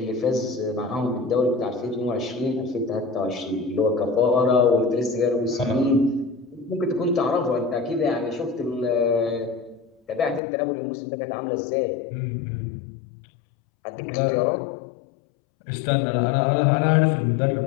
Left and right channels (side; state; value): right; drops out; at 10.4 s